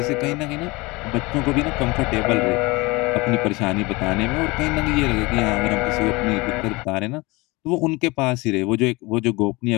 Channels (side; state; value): right; quieter; 23.9 dB